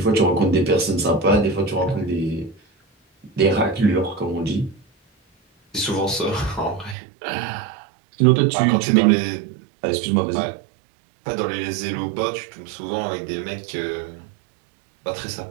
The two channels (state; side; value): drops out; left; at 7.0 s